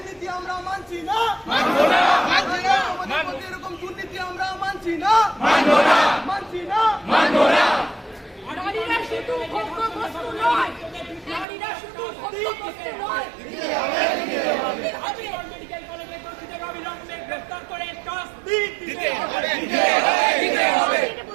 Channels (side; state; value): left; drops out; at 11.5 s